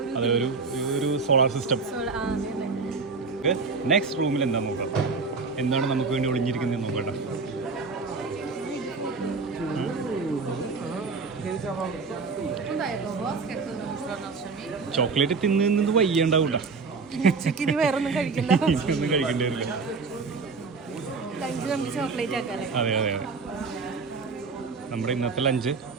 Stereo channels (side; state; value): left; quieter; 4.5 dB